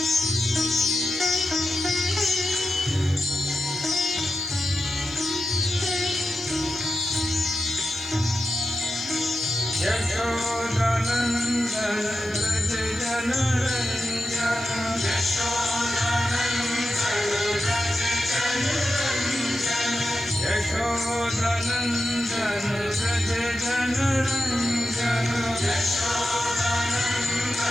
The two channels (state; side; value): noise; right; hiss, 30 dB below the sound